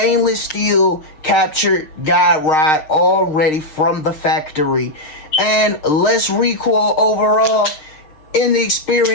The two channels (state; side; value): late; right; 6.5 ms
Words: steel captured guide rod already from the factory. And less recoil overall in the